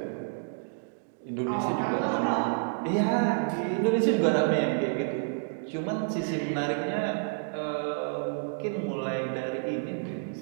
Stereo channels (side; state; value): left; silent; digital silence